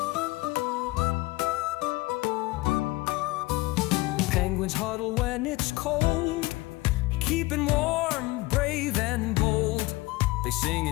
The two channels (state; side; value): quieter; right; 21.2 dB